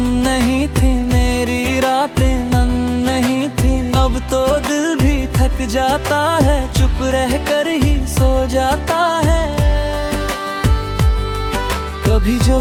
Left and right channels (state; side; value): identical; both; correlation 1.00